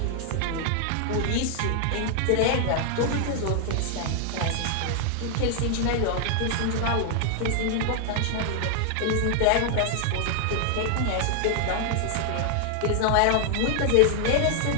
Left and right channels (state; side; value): different; both; correlation 0.00